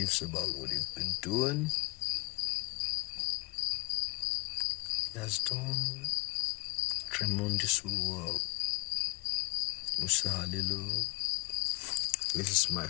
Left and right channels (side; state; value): right; quieter; 27.0 dB